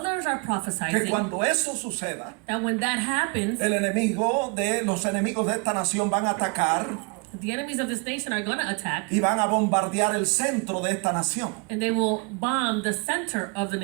are que prophesying cuando eso suceda, that when that happens, los enemigos de esta nación van a atacar the enemies of this nation are going to attack y van a bombardear el centro de esta nación. and they will bomb the center of the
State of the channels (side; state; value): left; quieter; 32.1 dB